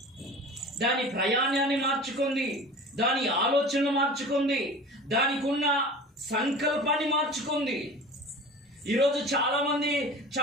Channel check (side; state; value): both; normal; correlation 0.37